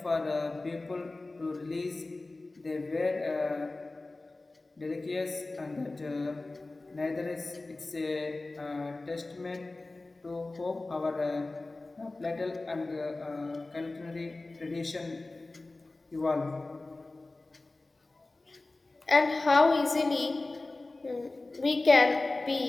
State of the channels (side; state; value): right; quieter; 3.1 dB